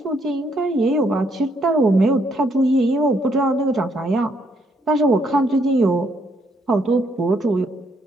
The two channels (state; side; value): normal; both; correlation 0.72